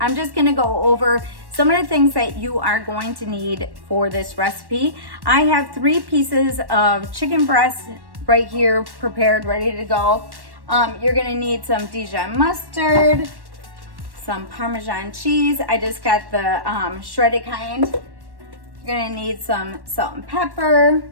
just gonna go over some of the things that you are going to need for this recipe. I have 3 pieces of chicken breast right here prepared, ready to go. You're gonna need some Dijon mustard, some Parmesan cheese. I just got the shredded kind. You're gonna need some salt and pepper.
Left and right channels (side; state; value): left; late; 1.1 ms